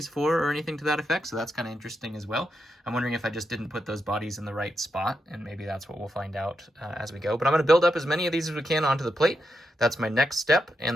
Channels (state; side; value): normal; both; correlation 0.85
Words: for or anything to that effect, so that's kind of interesting as well. I'm wondering if I just didn't put those bodies in the right spot, and maybe that's what we'll find out as we go. But I'm going to build up as many of these as we can onto the plate. That's my next step,